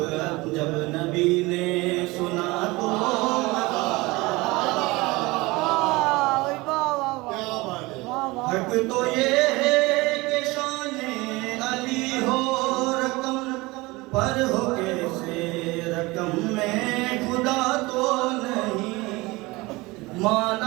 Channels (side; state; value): left; quieter; 22.5 dB